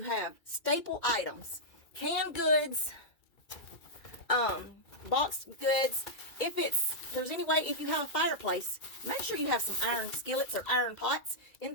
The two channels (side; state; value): right; late; 2.3 ms